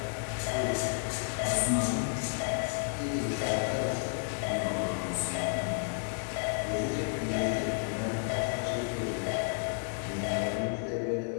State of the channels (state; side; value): silent; right; 57 dB below the other